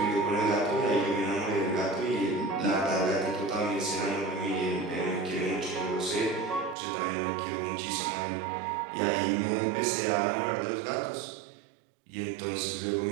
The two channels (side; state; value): left; drops out; at 6.8 s